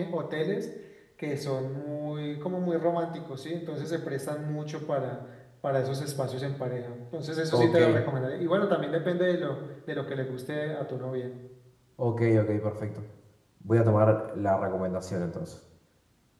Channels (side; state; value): both; identical; correlation 1.00